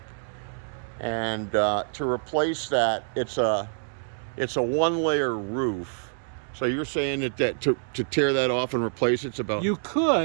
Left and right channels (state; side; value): silent; left; digital silence